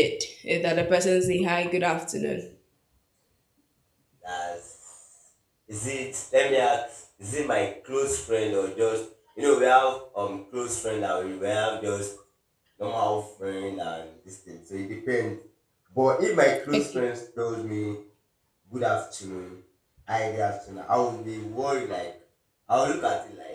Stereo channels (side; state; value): both; identical; correlation 1.00